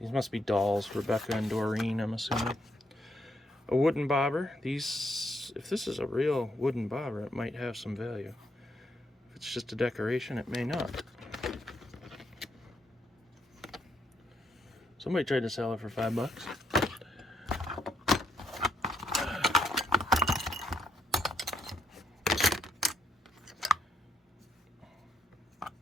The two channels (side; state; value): both; normal; correlation 0.75